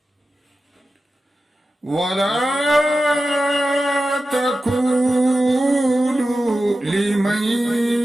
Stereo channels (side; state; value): both; normal; correlation 0.93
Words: ولا تقولوا لمن